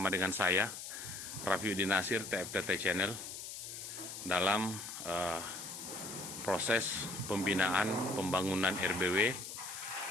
dengan saya, Rafiuddin Nasir, TFTT Channel, dalam proses pembinaan pembangunan RBW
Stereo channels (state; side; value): noise; left; hiss, 9 dB below the sound